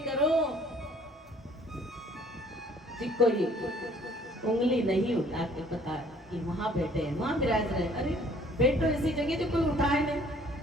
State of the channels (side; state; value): both; normal; correlation 0.57